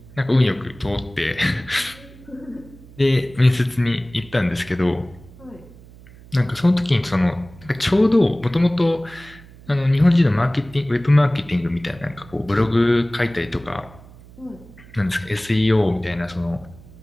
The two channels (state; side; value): noise; right; hum, 21 dB below the sound